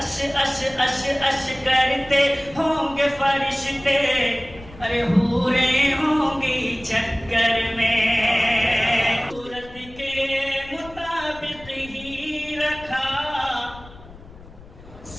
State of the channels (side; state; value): left; noise; rumble, 19 dB below the sound